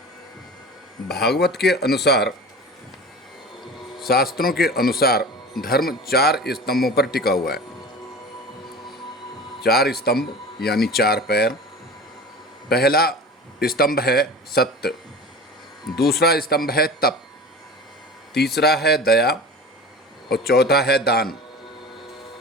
भागवत के अनुसार, शास्त्रों के अनुसार धर्म 4 स्तंभों पर टिका हुआ है। 4 स्तंभ यानी 4 पैर। पहला स्तंभ है सत्य, दूसरा स्तंभ है तप, तीसरा है दया और चौथा है दान।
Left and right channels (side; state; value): both; normal; correlation 0.35